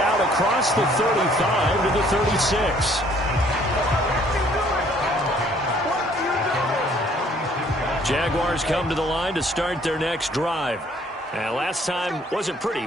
across the 35 to the 36. Jaguars come to the line to start their next drive. And last time wasn't pretty.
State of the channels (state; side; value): normal; both; correlation 0.61